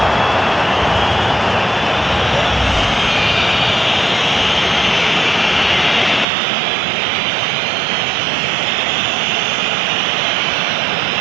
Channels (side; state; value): left; drops out; at 6.2 s